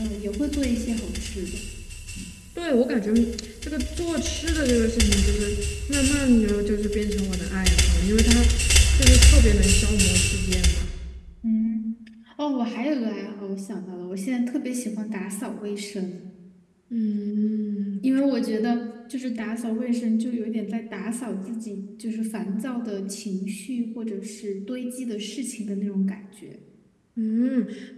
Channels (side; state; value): both; identical; correlation 1.00